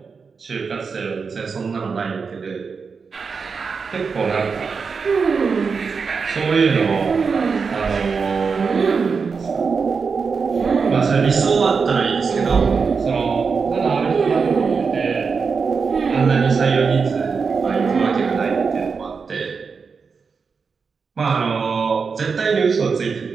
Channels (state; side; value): quieter; left; 5.3 dB